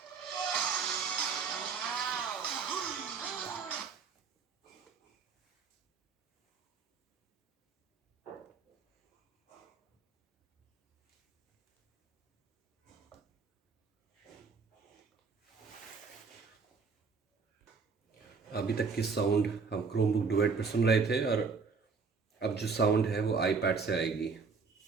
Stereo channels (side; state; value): left; quieter; 5.1 dB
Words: Wow. अभी तक की sound हम Chromebook duet पर सुन रहे थे, और अब जो साउंड है वो आईपैड से आएगी।